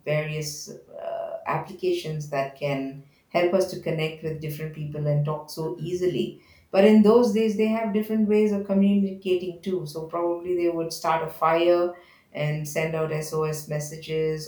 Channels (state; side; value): identical; both; correlation 1.00